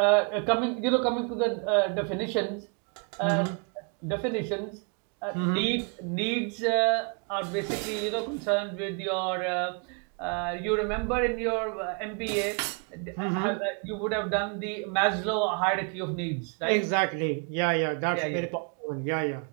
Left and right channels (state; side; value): quieter; left; 37.2 dB